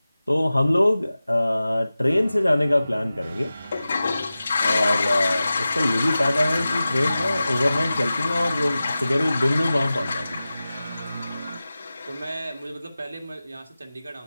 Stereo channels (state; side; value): inverted; both; correlation -0.95